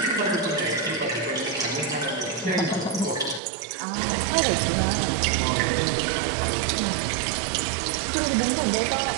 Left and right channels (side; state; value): left; drops out; at 3.4 s